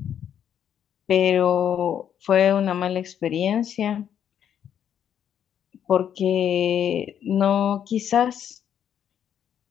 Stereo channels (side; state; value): right; quieter; 9.2 dB